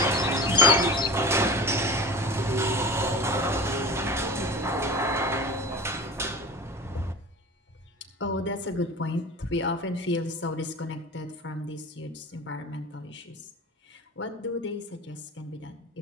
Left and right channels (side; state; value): both; normal; correlation 0.35